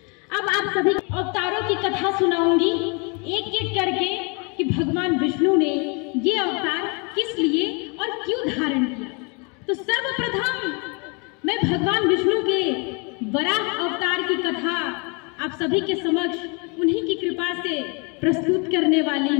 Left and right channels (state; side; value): quieter; right; 32.9 dB